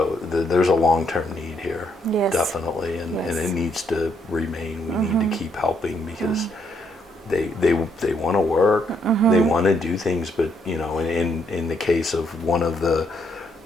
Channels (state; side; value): normal; both; correlation 0.73